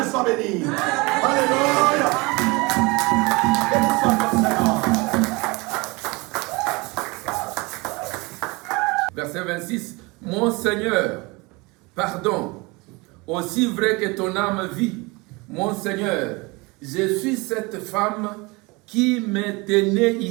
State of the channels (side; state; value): left; quieter; 25.6 dB